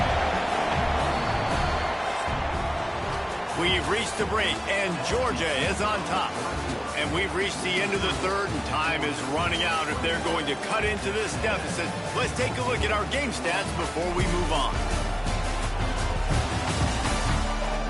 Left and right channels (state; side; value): identical; both; correlation 1.00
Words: We've reached the break, and Georgia is on top. And we've reached the end of the 3rd, and time is running out if they're going to cut into this deficit. Let's take a look at our game stats before we move on.